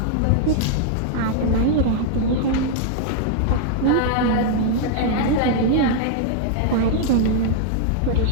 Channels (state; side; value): different; both; correlation -0.01